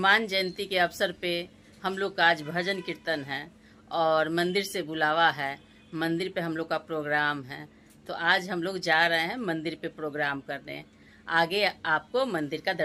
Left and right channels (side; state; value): both; identical; correlation 1.00